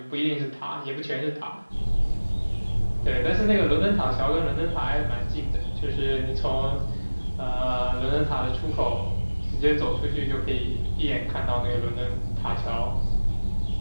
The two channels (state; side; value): inverted; both; correlation -1.00